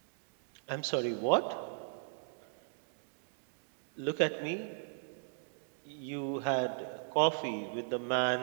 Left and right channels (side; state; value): left; silent; digital silence